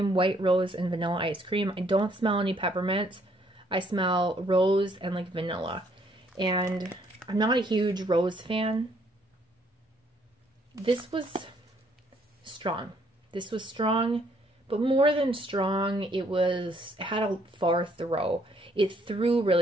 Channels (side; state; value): both; normal; correlation 0.67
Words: white rose, and vanilla ice cream. I don't smell any peppermint. I smell rose and like vanilla. And I'm not a huge rose fan. This was strong. This was strong, but more than strong, it had a far throw. It threw